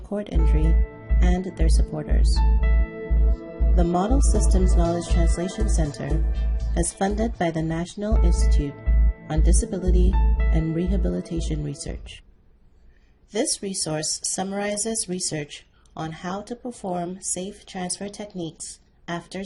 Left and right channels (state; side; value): identical; both; correlation 1.00